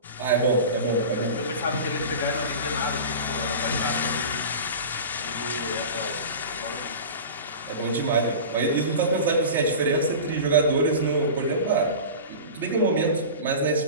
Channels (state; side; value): inverted; both; correlation -0.32